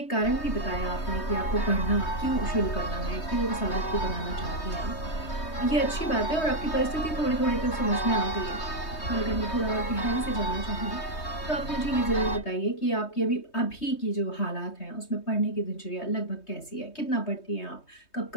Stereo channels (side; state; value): right; late; 3.2 ms